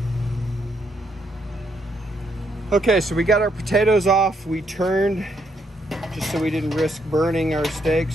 Okay, so we got our potatoes off. We turned just so we didn't risk burning our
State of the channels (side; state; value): both; normal; correlation 0.75